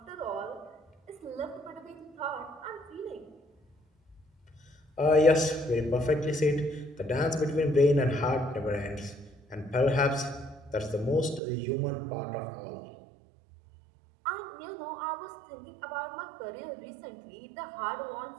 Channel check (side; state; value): left; drops out; at 11.4 s